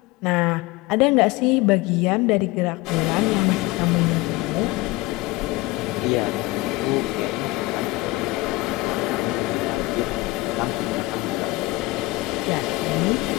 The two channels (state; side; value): quieter; right; 21.4 dB